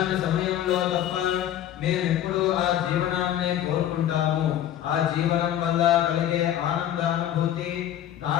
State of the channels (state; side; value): quieter; right; 11.3 dB